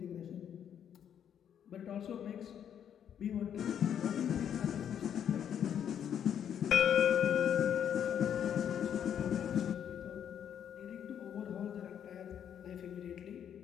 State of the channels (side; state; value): right; quieter; 9.0 dB